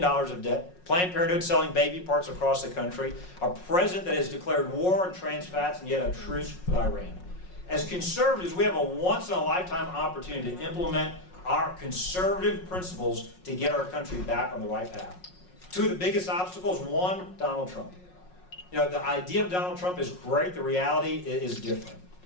of debt, Planned Parenthood selling baby parts across the country, a president that has declared war on trans fats and yet a truce with Iran. As conservatives, we have a once-in-a-lifetime opportunity to implement our conservative principles to get our country back on the right path. Two of the biggest obstacles, one, Donald Trump. You know, the idea of Donald Trump is great, the reality is different.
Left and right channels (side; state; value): right; late; 5.5 ms